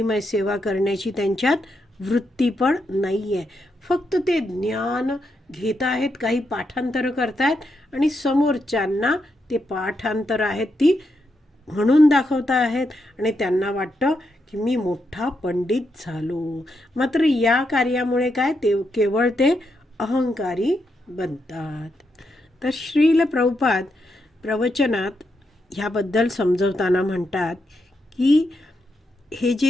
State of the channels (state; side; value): normal; both; correlation 0.82